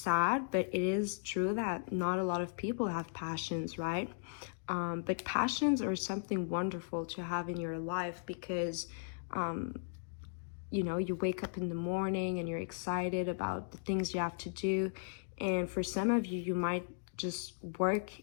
but it is true that not a lot of people have passions, right? But passions are something wonderful to have in your life, because you know, you wake up in the morning and you're excited about the things you have to do. And for some of you, you might just work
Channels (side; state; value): right; silent; digital silence